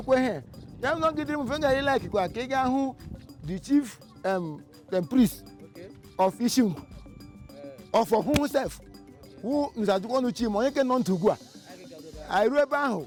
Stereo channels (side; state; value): both; identical; correlation 1.00